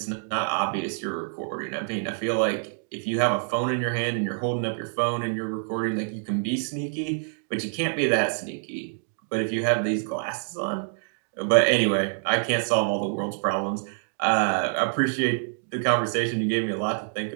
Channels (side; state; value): left; silent; 61 dB below the other